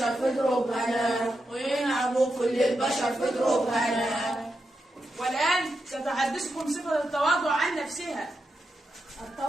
في دروبنا، وينعموا كل البشر في دروبنا. والآن ستحدثكم صفة التواضع عن نفسها.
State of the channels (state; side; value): normal; both; correlation 0.87